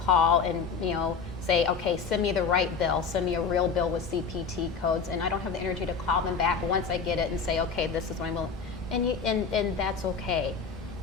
call and, you know, say, okay, send me the right bill, send me a real bill with CPT codes, and I don't have the energy to call them back once I get it and say, okay, this is what I'm willing, and that's okay.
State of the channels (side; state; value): right; quieter; 5.6 dB